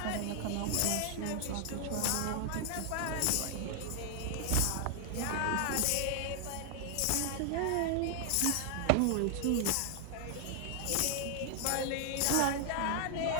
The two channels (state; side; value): different; both; correlation 0.00